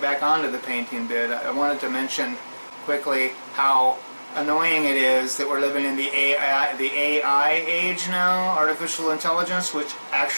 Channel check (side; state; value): both; inverted; correlation -1.00